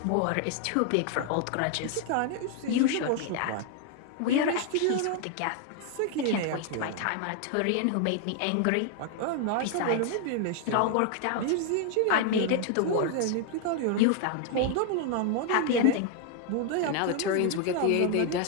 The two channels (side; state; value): both; different; correlation 0.00